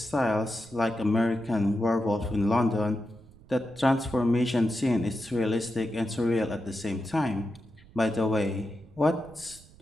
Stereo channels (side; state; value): right; noise; rumble, 23 dB below the sound